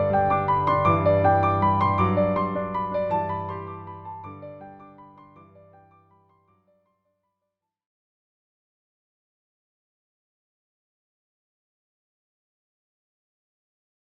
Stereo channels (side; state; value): both; identical; correlation 1.00